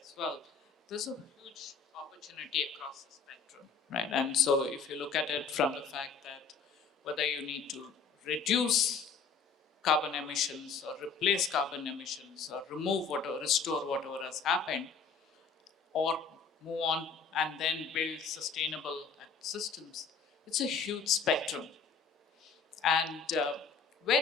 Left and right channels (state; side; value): quieter; right; 5.4 dB